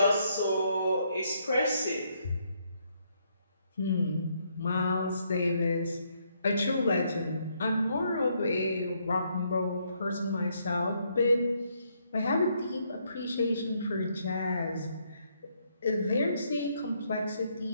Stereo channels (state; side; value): inverted; both; correlation -0.73